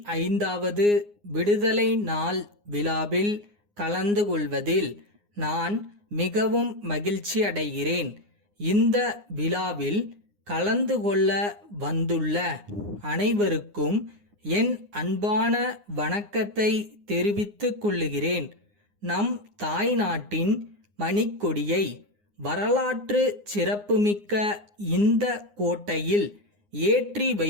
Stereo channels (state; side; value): late; left; 9.7 ms